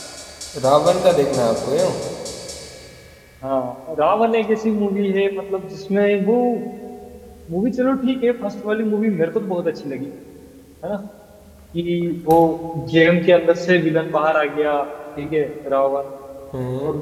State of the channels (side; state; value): both; identical; correlation 1.00